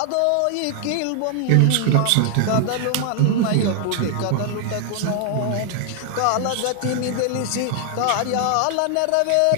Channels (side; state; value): both; different; correlation 0.00